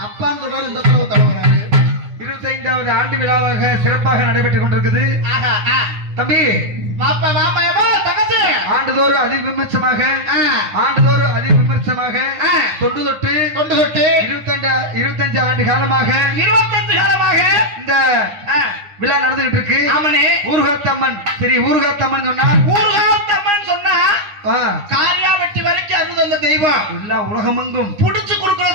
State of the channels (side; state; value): left; late; 9.8 ms